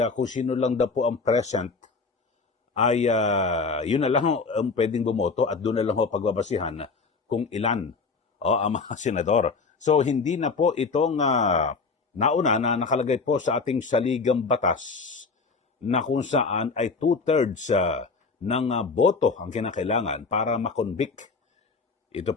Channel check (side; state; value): right; quieter; 4.5 dB